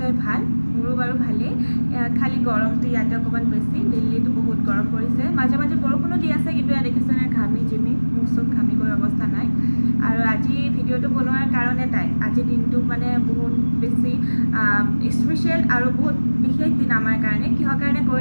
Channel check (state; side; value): inverted; both; correlation -1.00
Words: ভাল। মোৰো বাৰু ভালেই, খালি গৰমটো ইয়াতে অকণমান বেছি। দিল্লীতো বহুত গৰম পৰিছে, মাজে মাজে বৰষুণো দি আছে, কিন্তু ইয়াত দেখিছেনে ঘামি জিমি মোৰ চব ঘামি গৈ অৱস্থা নাই। আৰু আজি ভিডিঅ'টো বনোৱাৰ কাৰণ এটাই, আজিৰ দিনটো মানে বহুত বেছি স্পেচিয়েল আৰু বহুত বিশেষ দিন আমাৰ কাৰণে। কিহৰ কাৰণে